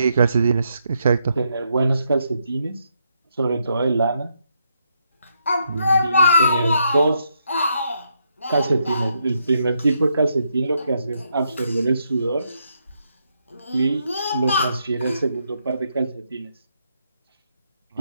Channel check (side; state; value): both; inverted; correlation -0.78